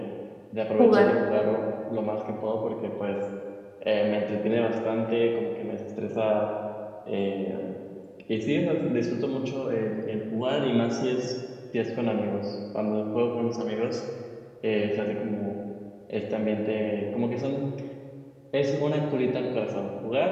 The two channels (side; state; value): both; identical; correlation 1.00